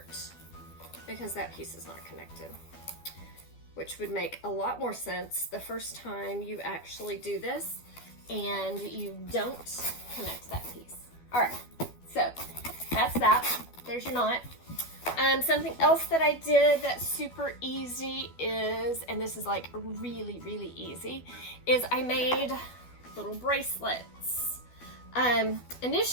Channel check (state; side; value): late; right; 12 ms